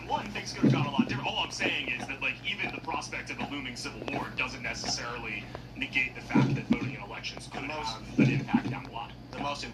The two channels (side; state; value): both; identical; correlation 1.00